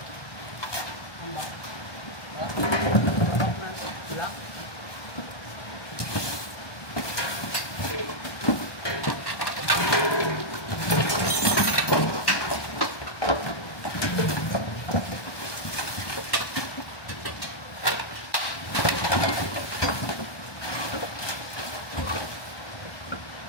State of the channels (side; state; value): right; late; 1.1 ms